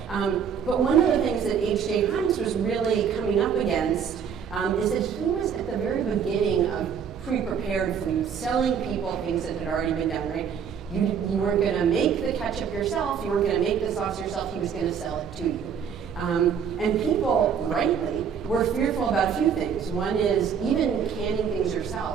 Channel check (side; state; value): left; quieter; 7.4 dB